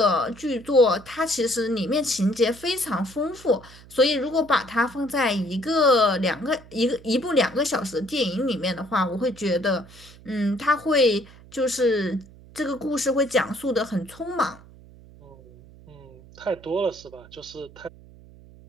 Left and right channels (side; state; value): right; noise; hum, 22 dB below the sound